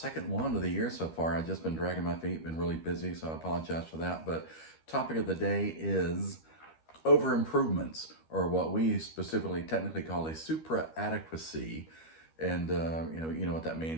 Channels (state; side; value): late; right; 13 ms